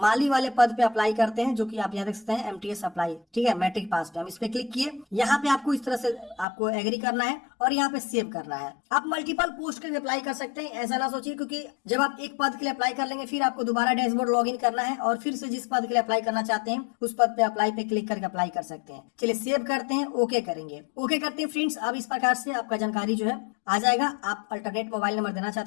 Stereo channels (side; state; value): right; drops out; at 6.5 s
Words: वाले पद पे अप्लाई करते हैं, जो कि आप यहाँ देख सकते हैं MTS अप्लाई, ठीक है, मैट्रिक पास पे। हम इस पे क्लिक किए, यहाँ पे आपको इस तरह से आपको एग्री करना है और यहाँ पे सेव करना है। आप मल्टीपल पोस्ट के लिए अप्लाई कर सकते हैं, ऐसा ना सोचिए, क्योंकि जब आप एक पद के लिए अप्लाई कर लेंगे फिर आपको दोबारा डैशबोर्ड लॉगिन करना है और फिर से जिस पद के लिए अप्लाई करना चाहते हैं उस पद पे अप्लाई पे क्लिक करके अप्लाई कर सकते हैं। चलिए सेव करते हैं, ओके करेंगे, ओके करते हैं फ्रेंड्स। अब इस प्रकार से आपका जानकारी जो है आ जाएगा। आप अल्टरनेट मोबाइल नंबर देना